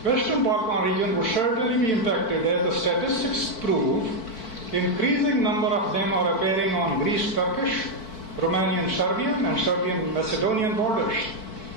Western Balkan region would certainly be impacted, as the statistics prove. Increasing number of them are appearing on Greece-Turkish, Romanian-Serbian, and Serbian-Macedonian borders.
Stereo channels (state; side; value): late; right; 4.5 ms